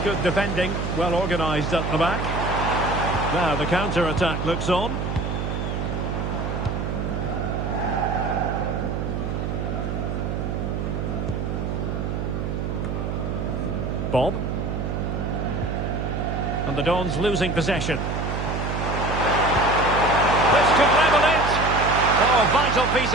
defending. Well organised at the back. Now the counter-attack looks on. Bob. And the Dons losing possession. This could level it. Oh, vital piece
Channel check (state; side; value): noise; right; hum, 2 dB below the sound